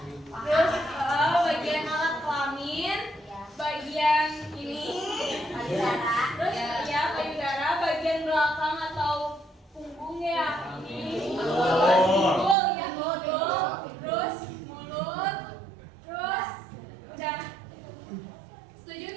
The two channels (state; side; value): drops out; left; at 12.6 s